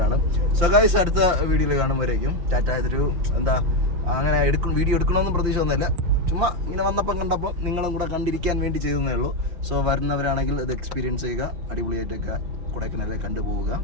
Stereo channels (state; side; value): late; left; 5.7 ms